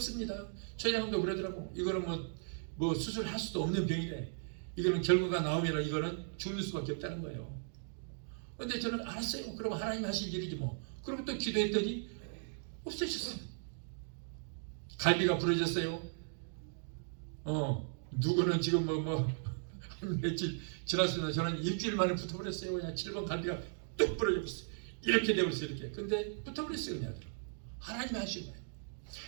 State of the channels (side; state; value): left; silent; digital silence